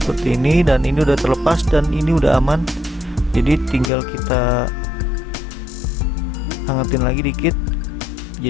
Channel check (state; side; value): drops out; right; at 3.9 s